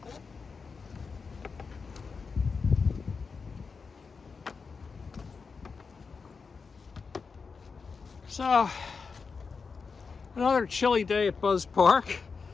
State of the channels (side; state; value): right; quieter; 5.1 dB